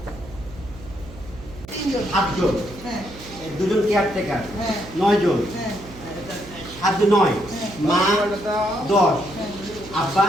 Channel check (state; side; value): noise; right; hum, 17 dB below the sound